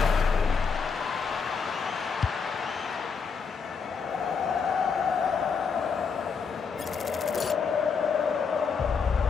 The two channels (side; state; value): right; quieter; 5.7 dB